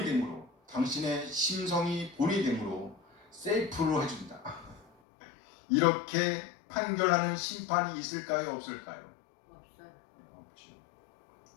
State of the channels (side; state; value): right; drops out; at 4.9 s